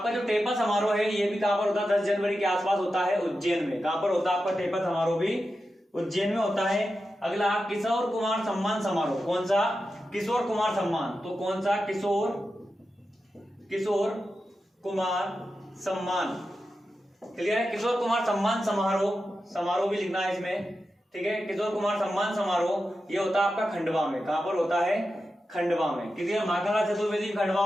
जो टेपा समारोह है ये भी कहां पर होता है? 10 जनवरी के आसपास होता है उज्जैन में। कहां पर होता है आपका टेपा समारोह? भी उज्जैन में होता है। अगला किशोर कुमार सम्मान समारोह, कौन सा? किशोर कुमार सम्मान। तो कौन सा? किशोर कुमार सम्मान, क्लियर है। किशोर कुमार सम्मान समारोह भी लिखना है इसमें, ठीक है। किशोर कुमार सम्मान समारोह ये होता है आपका खंडवा में। कहां पर होता है? खंडवा में, क्लियर। माखनलाल चतुर्वेदी खंडवा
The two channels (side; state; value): both; normal; correlation 0.90